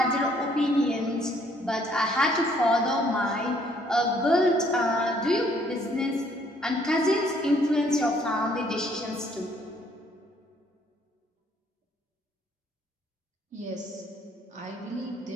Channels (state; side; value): normal; both; correlation 0.65